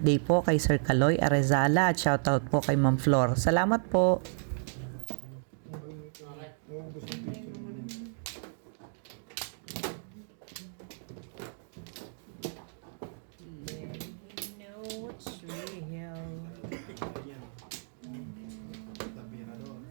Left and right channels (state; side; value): silent; left; digital silence